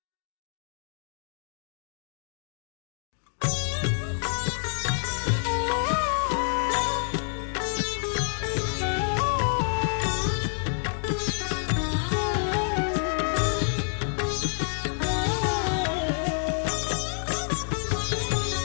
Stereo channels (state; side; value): silent; right; 60 dB below the other